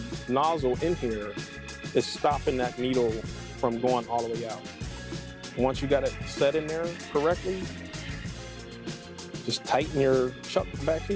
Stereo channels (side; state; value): both; identical; correlation 1.00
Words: nozzle in here is stopping that needle from going all the way out. Once you got it set in there correctly, just tighten your chuck back